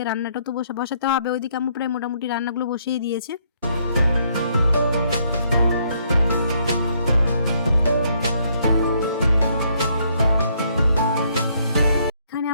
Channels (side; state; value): both; inverted; correlation -0.70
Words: রান্নাটা তো বসাতে হবে। ওইদিকে আম্মু প্রায় মোটামুটি রান্নাগুলো বসিয়ে দিয়েছে। এখানে